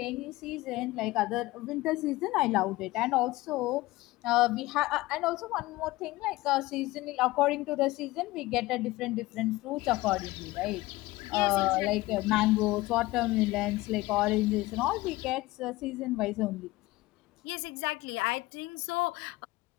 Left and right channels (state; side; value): quieter; right; 19.2 dB